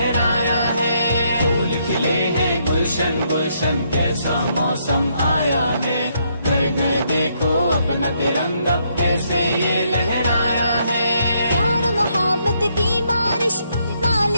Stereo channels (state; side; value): inverted; both; correlation -0.73